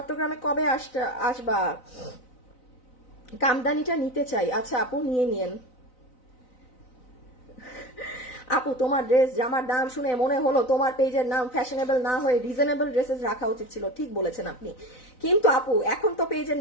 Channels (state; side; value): late; right; 4.0 ms